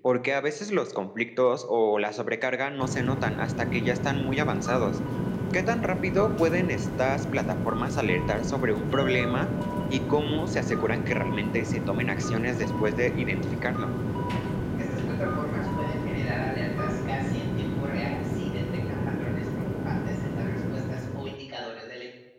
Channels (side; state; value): both; identical; correlation 1.00